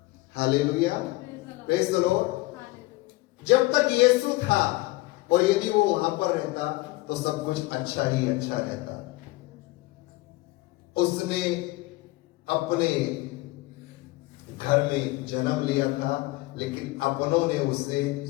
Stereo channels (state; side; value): quieter; right; 20.5 dB